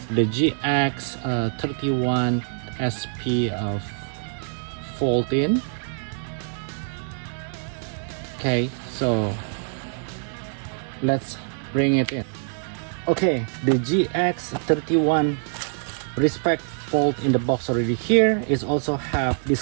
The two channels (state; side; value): silent; left; digital silence